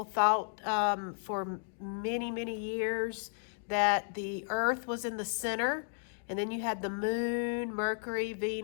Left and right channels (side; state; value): right; silent; digital silence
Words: thought for many, many years, that the Earth was in the center, and then you had the Moon, Mercury,